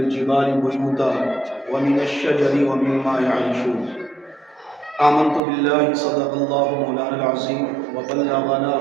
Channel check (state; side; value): drops out; left; at 5.4 s